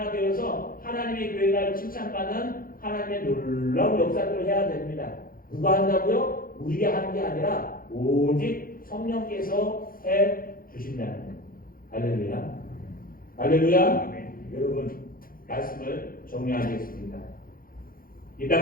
되어서 하나님의 교회가 칭찬받는 하나님의 놀라운 역사들을 해야 됩니다. 누가 한다고요? 우리가 하는 게 아니라 오직 성령께서 해 주신다는 거예요. 할렐루야. 할렐루야. 여러분, 말씀을 정리하겠습니다. 이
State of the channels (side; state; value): right; late; 0.42 ms